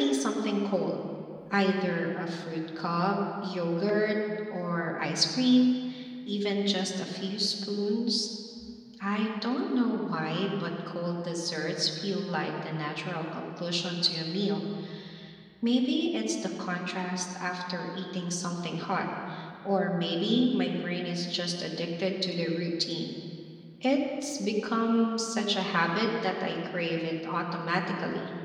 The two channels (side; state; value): both; identical; correlation 1.00